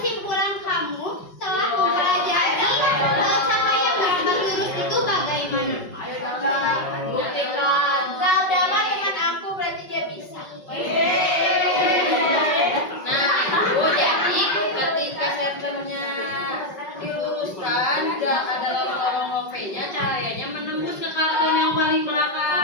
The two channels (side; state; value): right; late; 5.3 ms